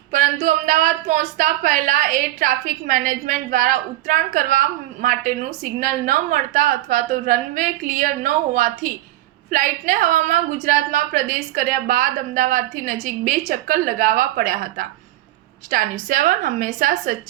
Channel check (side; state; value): left; quieter; 15.5 dB